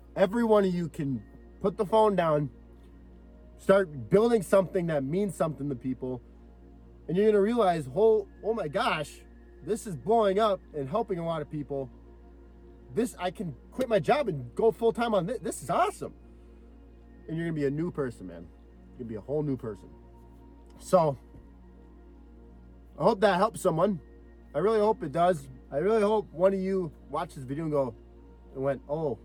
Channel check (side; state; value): both; identical; correlation 1.00